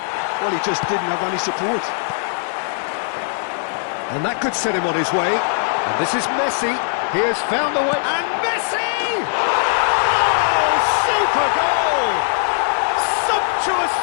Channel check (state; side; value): silent; right; 66 dB below the other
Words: Well, he just didn't have any support. And that could set him on his way. And this is Messi. He has found the way. And Messi! Oh, super goal! Sumptuous